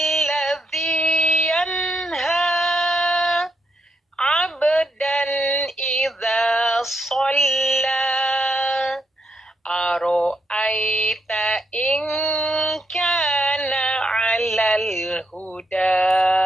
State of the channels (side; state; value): both; normal; correlation 0.80